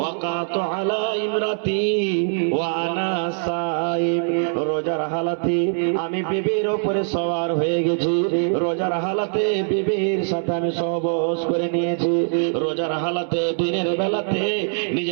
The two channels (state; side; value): silent; left; 64 dB below the other